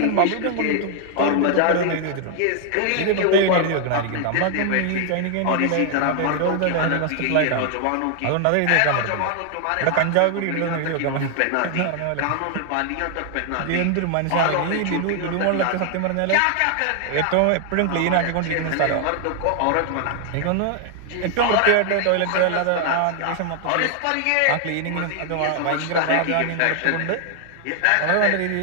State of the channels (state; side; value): different; both; correlation 0.00